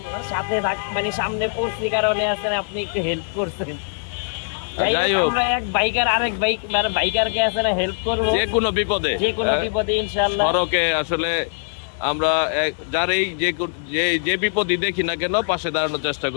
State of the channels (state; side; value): silent; right; digital silence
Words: সাথে মানে সামনে পৌঁছি কারণে আছেন, আপনি একটু হেল্প করছেন। যাই যাই হোক, হোক, আমরা এক বাইকার আরেক বাইক মানে বাইকারকে আছে না হেল্প করবো যে কোনো বিপদে। যে কোনো বিপদে ইনশাআল্লাহ। সড়কে আসলে আমরা যার এই যে বিপদই দেখি না কেন পাশে দাঁড়ানোর চেষ্টা